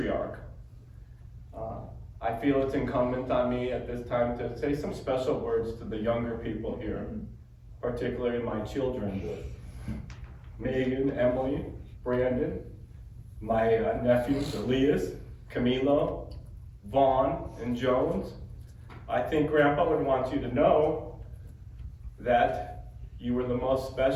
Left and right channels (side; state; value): both; identical; correlation 1.00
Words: I feel it's incumbent on me at this time to say some special words to the younger people here, particularly my children, Megan, Emily, Brandon, my nephews, Elias, Camilo, Vaughn, and Jones. I think Grandpa would want you to know that you were the most